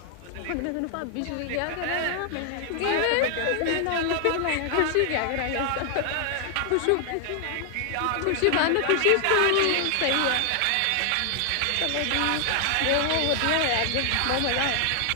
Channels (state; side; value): different; both; correlation 0.00